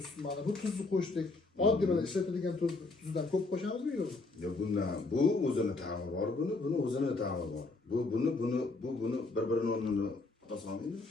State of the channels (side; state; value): right; quieter; 3.5 dB